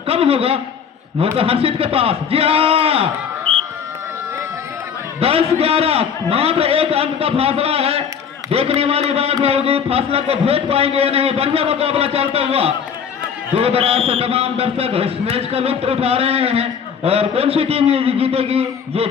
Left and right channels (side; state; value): right; quieter; 7.2 dB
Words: कम होगा? मौका हर्षित के पास। जी हाँ, 10-11 मात्र 1 अंक का फासला है। देखने वाली बात होगी फासला को भेज पाएंगे या नहीं। बढ़िया मुकाबला चलता हुआ दूर दराज से तमाम दर्शक इस मैच का लुत्फ उठा रहे हैं और कौन सी टीम ये जीतेगी ये